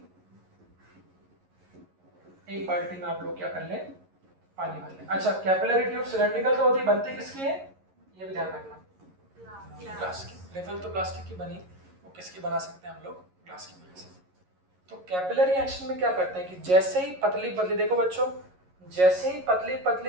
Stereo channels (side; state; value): left; late; 11 ms